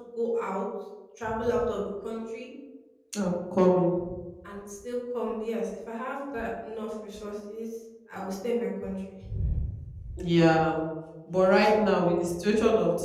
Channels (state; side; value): identical; both; correlation 1.00